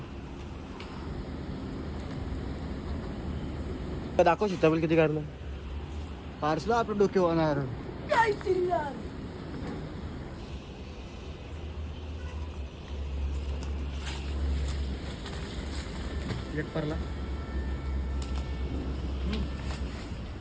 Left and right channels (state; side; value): identical; both; correlation 1.00